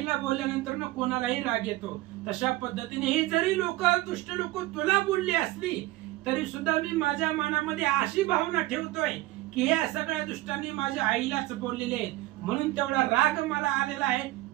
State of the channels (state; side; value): quieter; left; 17.8 dB